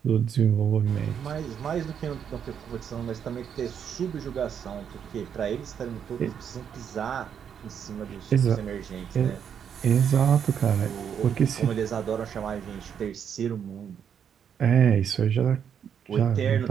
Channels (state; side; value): quieter; left; 8.1 dB